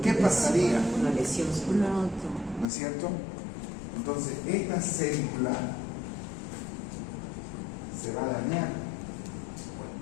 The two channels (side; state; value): right; drops out; at 2.7 s